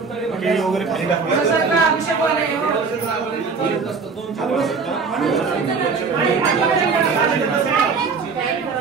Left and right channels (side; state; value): left; quieter; 4.9 dB